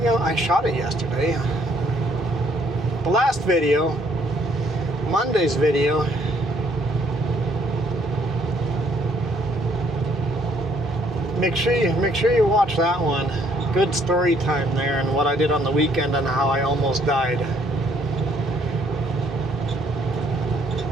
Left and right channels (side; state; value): both; normal; correlation 0.65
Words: I shot it yesterday. The last video, Monday's video, make sure you watch that one. Good story time there, and what I did on the weekend and how I almost died.